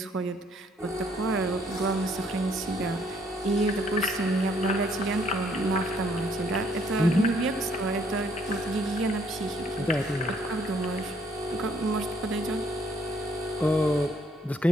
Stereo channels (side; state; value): both; normal; correlation 0.66